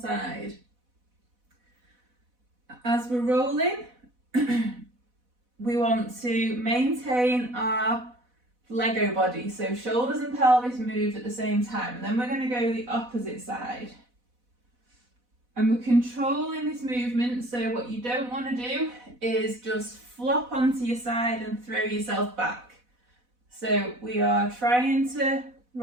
As we're rolling, we want to maintain our Lego body, so shoulders and pelvis moved at the same time, and then we're going to go the opposite side. And we're controlling this movement, so what you don't want to do is just flop onto your side and throw yourself back. So we are trying to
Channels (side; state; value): left; late; 4.1 ms